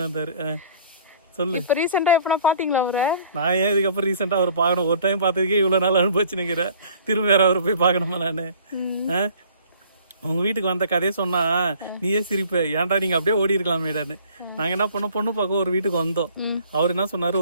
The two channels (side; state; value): both; inverted; correlation -0.53